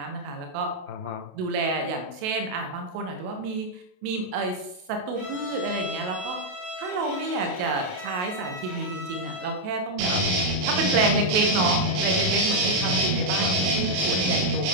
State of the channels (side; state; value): left; late; 28 ms